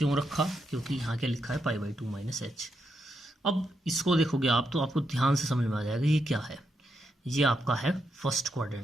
रखा? क्योंकि यहाँ क्या लिखा है? पाई/2 माइनस h। अब इसको देखोगे आप तो आपको ध्यान से समझ में आ जाएगा ये क्या है। ये आपका है फर्स्ट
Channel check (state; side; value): normal; both; correlation 0.82